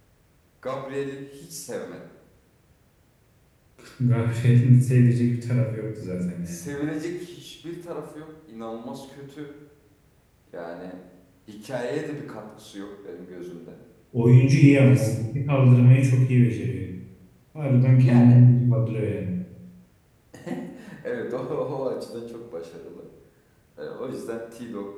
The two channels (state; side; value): identical; both; correlation 1.00